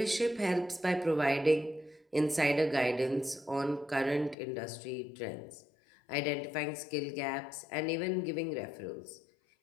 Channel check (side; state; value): right; drops out; at 4.4 s